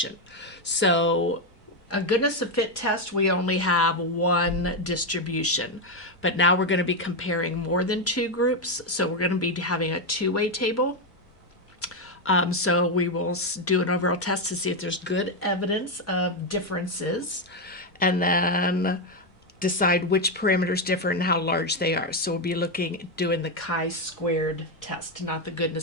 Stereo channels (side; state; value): both; normal; correlation 0.06